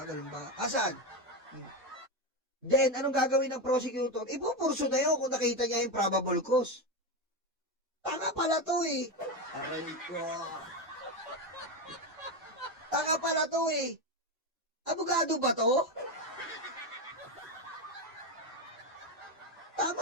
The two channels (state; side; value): normal; both; correlation 0.13